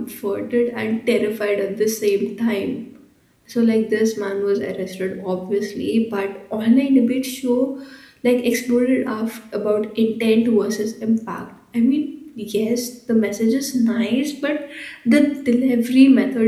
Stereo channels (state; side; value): identical; both; correlation 1.00